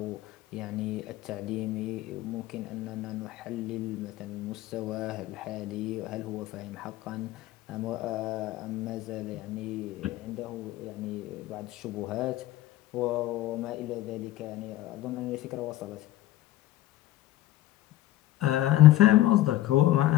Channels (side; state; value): right; quieter; 15.0 dB